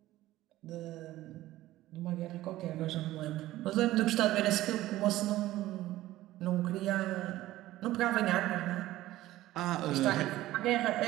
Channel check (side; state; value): left; quieter; 15.8 dB